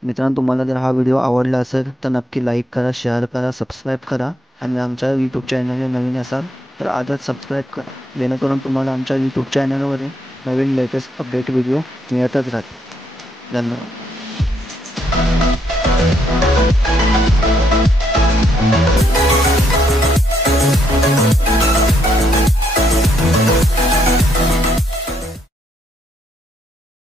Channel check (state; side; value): normal; both; correlation 0.75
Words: मित्रांनो, तुम्हाला जर हा व्हिडिओ आवडला असेल तर नक्की लाईक करा, शेअर करा, सबस्क्राईब करा आणि आमच्या यूट्यूब चॅनलला नवीन असाल तर आजच सबस्क्राईब करा, जेणेकरून तुम्हाला आमच्या यूट्यूब चॅनलवरील नवीन लेटेस्ट अपडेट व्हिडिओ मिळतच राहतील. धन्यवाद.